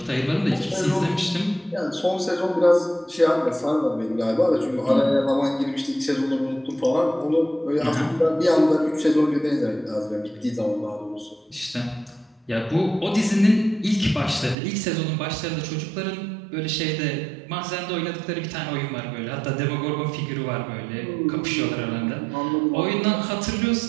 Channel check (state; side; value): drops out; left; at 14.6 s